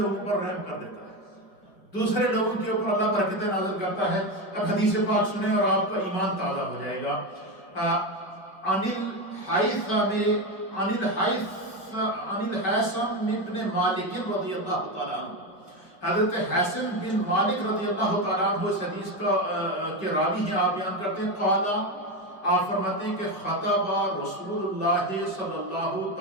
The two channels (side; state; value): right; late; 4.9 ms